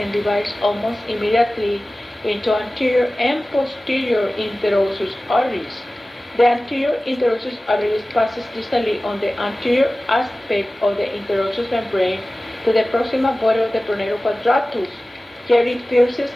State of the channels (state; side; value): normal; both; correlation 0.97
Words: divides almost immediately into anterior and posterior interosseous arteries. The anterior interosseous artery passes distally on the anterior aspect of the interosseous membrane to the proximal body of the pronator quadratus. Here it pierces